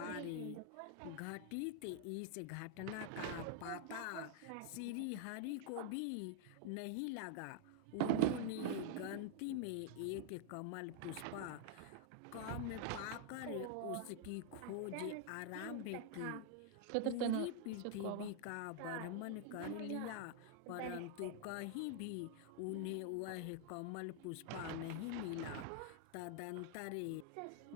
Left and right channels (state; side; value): different; both; correlation -0.01